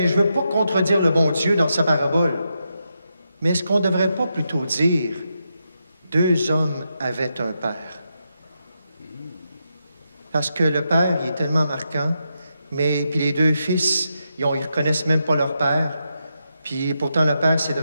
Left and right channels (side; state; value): both; inverted; correlation -0.85